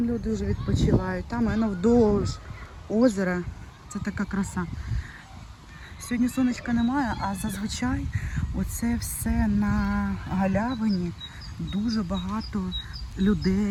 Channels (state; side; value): identical; both; correlation 1.00